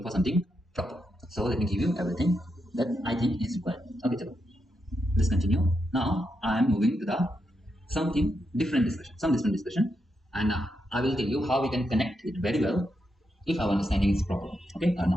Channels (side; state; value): both; normal; correlation 0.84